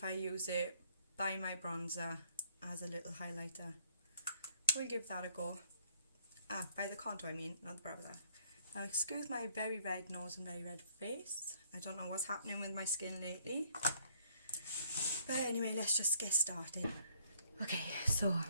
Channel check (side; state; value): both; inverted; correlation -0.62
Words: I use it by my bronzer as a little highlighter. We'll give that a go. By the contour I mean, not the bronzer. Now excuse my very red nose and very red face. I don't know what's happening with my skin lately. But anyway, let's just get started. Okay, so